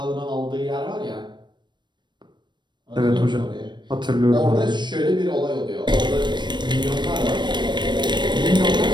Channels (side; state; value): left; late; 0.22 ms